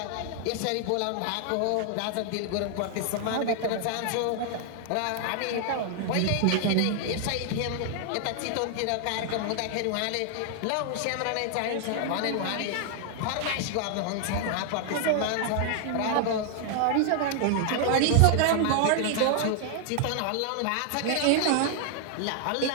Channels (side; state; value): both; different; correlation 0.00